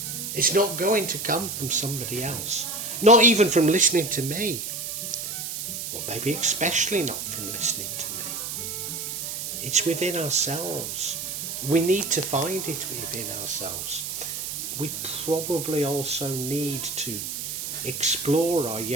It's not going to come from somebody else. Not even from listening to me. Well, maybe especially not from listening to me. It's within ourselves. We need to find it within ourselves. We probably also need to explore our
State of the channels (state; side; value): noise; right; hiss, 5 dB below the sound